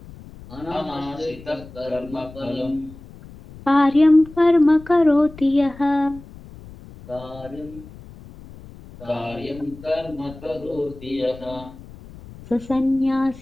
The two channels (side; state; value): left; noise; rumble, 18 dB below the sound